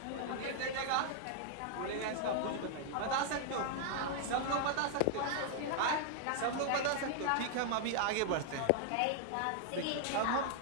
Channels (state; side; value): different; both; correlation -0.01